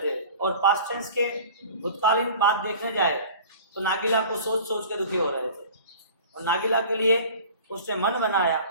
और पास्ट टेंस के भूतकालीन बात देखने जाए तो नागिला को सोच सोच के दुखी हो रहे थे। और नागिला के लिए उसने मन बनाया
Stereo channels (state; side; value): inverted; both; correlation -0.43